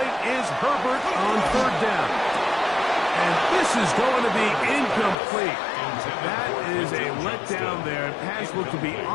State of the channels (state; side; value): drops out; right; at 5.2 s